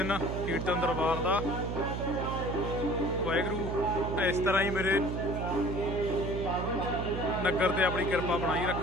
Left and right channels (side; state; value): right; noise; hum, 3 dB below the sound